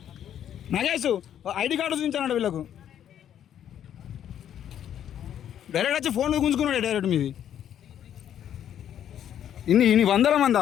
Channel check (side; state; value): right; quieter; 10.1 dB